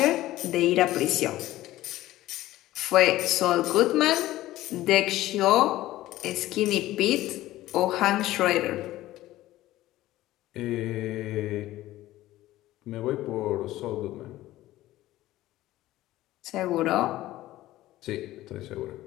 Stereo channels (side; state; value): right; quieter; 15.8 dB